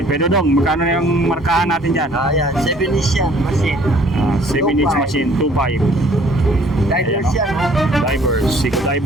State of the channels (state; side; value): normal; both; correlation 0.57